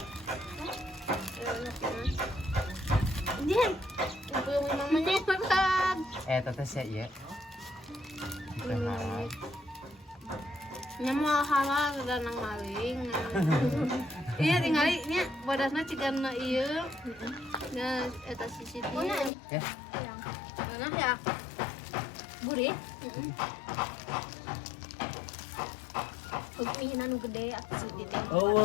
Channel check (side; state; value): right; drops out; at 19.3 s